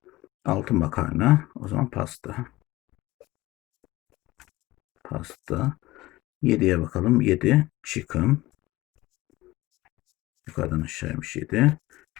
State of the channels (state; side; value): quieter; right; 18.6 dB